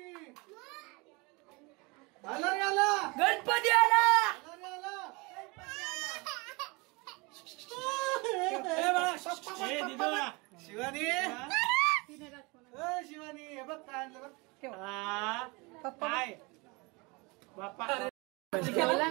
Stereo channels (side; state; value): left; quieter; 27.0 dB